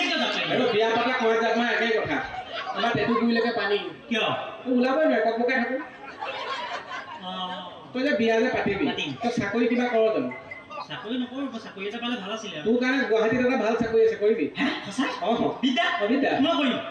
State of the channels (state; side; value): identical; both; correlation 1.00